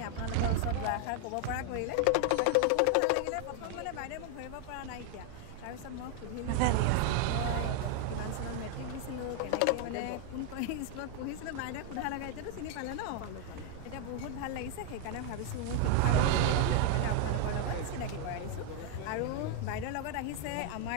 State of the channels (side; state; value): both; different; correlation 0.00